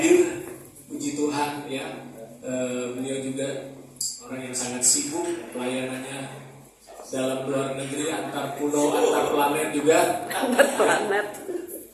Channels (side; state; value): both; identical; correlation 1.00